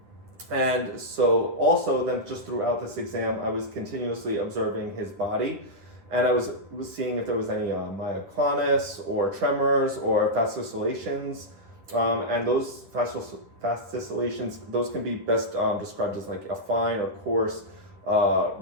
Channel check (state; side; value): late; left; 10 ms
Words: And so also then just throughout this exam, I was continuously observing his body, and I was seeing if there was any myoclonus or tremors or fast oscillations. And those fast oscillations, those can be best described as like a fine or coarse